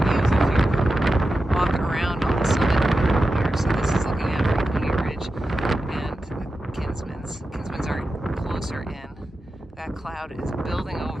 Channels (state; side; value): normal; both; correlation 0.91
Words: views if you walk around on the summit here. So this is looking at Franconia Ridge. cloud is building